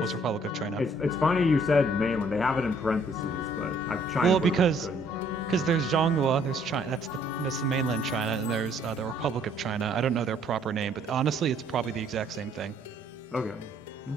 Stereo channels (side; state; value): both; normal; correlation 0.63